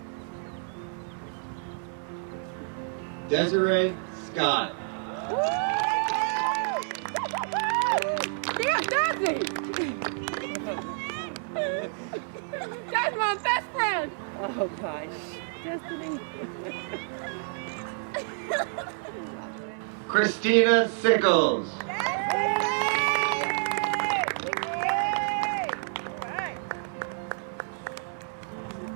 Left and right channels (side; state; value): left; silent; 59 dB below the other